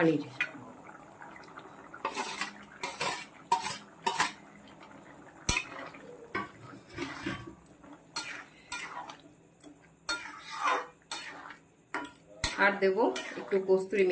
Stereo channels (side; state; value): both; identical; correlation 1.00